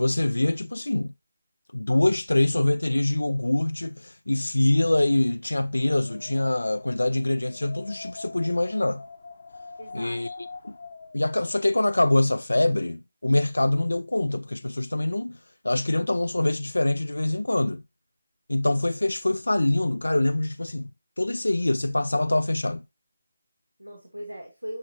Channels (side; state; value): both; inverted; correlation -1.00